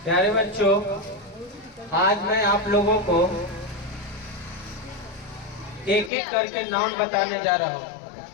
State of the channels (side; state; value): right; drops out; at 6.1 s